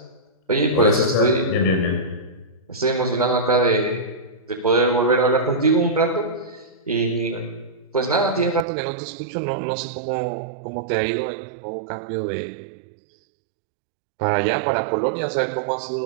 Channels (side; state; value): left; drops out; at 8.7 s